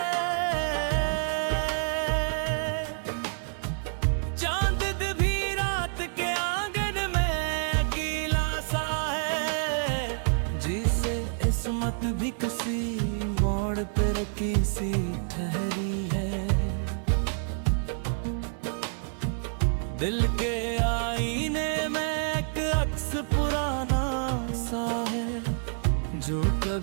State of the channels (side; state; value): left; silent; 59 dB below the other